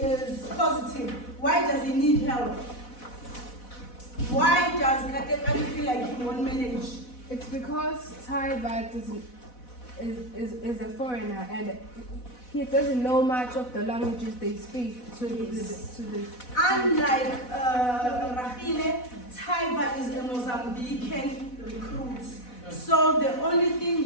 positive. Why does he need help? Why does Kadegani feel like he won't manage? It's because Taiba is a foreigner and he doesn't know much of the languages they speak to the Unlike Rahile, Taiba is a Mozambican recruit. So the only thing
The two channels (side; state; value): right; late; 4.1 ms